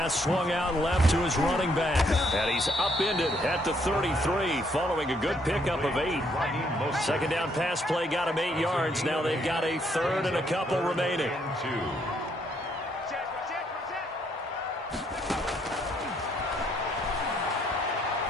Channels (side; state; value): both; normal; correlation 0.70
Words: swung out left to his running back. And he's upended at the 33 following a good pickup of 8. Second down pass play got him 8 yards. Now they've got a 3rd and a couple remaining.